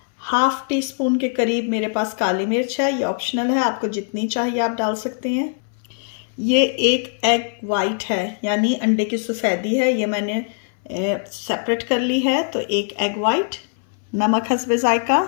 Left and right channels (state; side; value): silent; right; 62 dB below the other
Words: हाफ टी स्पून के करीब मेरे पास काली मिर्च है, ये ऑप्शनल है, आपको जितनी चाहिए आप डाल सकते हैं। ये एक एग वाइट है, यानी अंडे की सफ़ेदी है, ये मैंने सेपरेट कर ली है। तो एक एग वाइट, नमक हस्बे जायका।